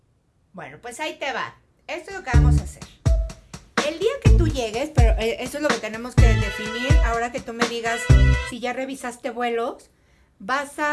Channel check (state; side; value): identical; both; correlation 1.00